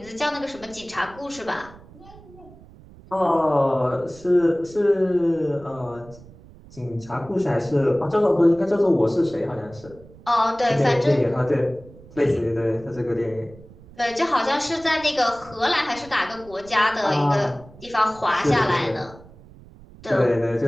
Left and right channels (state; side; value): noise; right; rumble, 21 dB below the sound